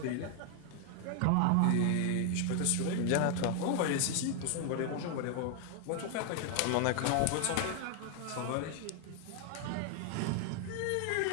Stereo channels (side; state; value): both; different; correlation 0.00